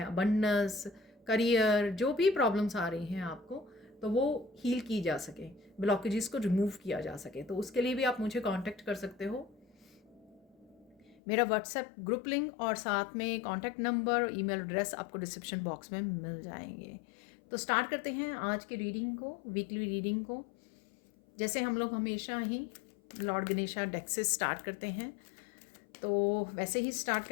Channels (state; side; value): drops out; right; at 11.2 s